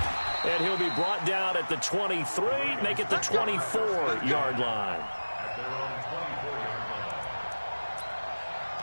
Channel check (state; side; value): inverted; both; correlation -1.00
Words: And he'll be brought down at the 23, make it the 24-yard line.